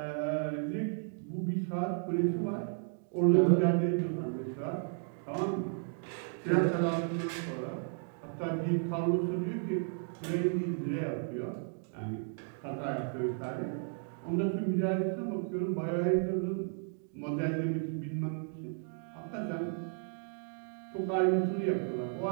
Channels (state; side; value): silent; left; 55 dB below the other